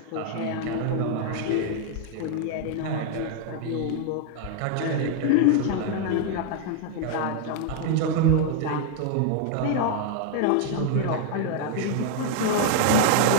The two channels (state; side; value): different; both; correlation 0.00